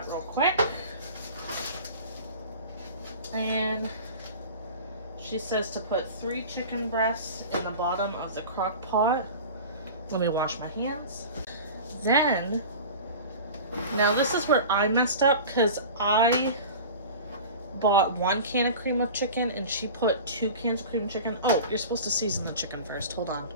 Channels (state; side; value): inverted; both; correlation -0.36